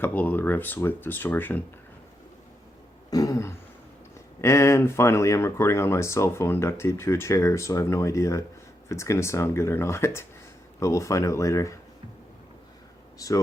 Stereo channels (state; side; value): normal; both; correlation 0.83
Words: of the riffs with distortion. And finally, I'm recording on my cell phone duct taped to a chair, so I have no idea if it's going to sound good or not, but we'll find out later.